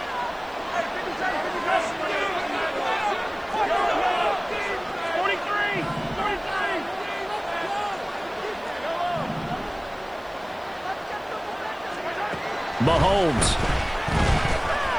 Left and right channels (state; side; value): noise; left; hiss, 28 dB below the sound